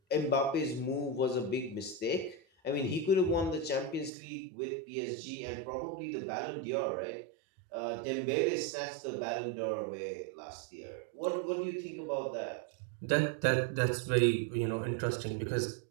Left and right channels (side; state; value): left; drops out; at 4.1 s